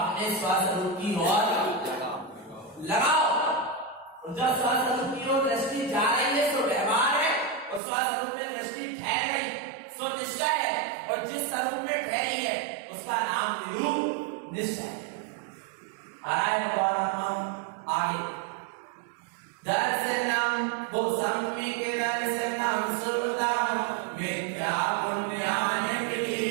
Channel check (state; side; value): drops out; left; at 7.8 s